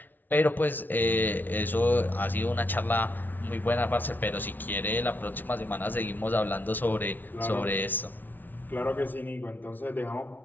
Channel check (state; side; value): late; right; 0.087 ms